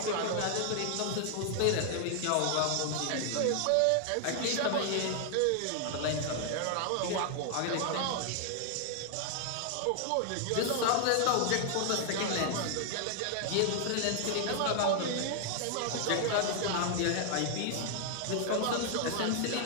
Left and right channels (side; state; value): both; different; correlation 0.00